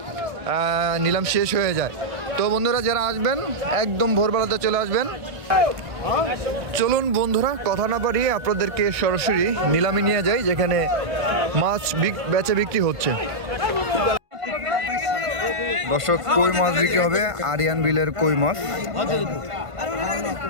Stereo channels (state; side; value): late; left; 1.5 ms